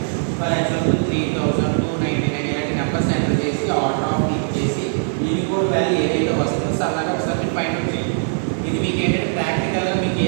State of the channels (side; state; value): left; silent; 64 dB below the other